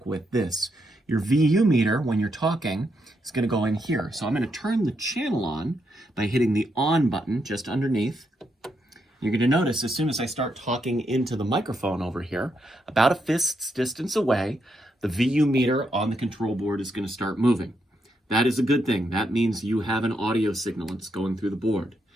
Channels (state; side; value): normal; both; correlation 0.80